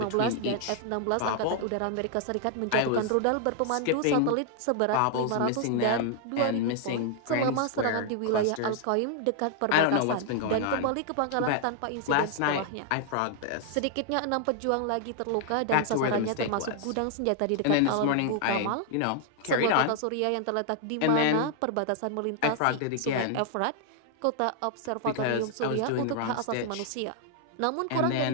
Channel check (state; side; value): different; both; correlation 0.00